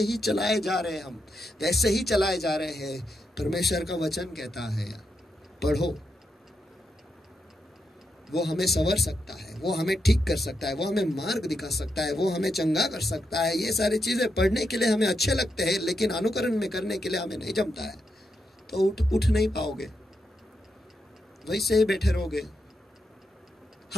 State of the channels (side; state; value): both; normal; correlation 0.84